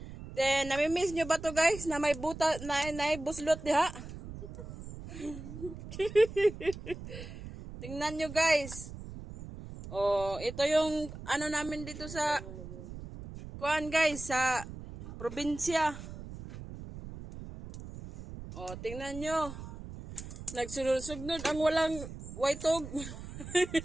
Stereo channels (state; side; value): noise; right; rumble, 12 dB below the sound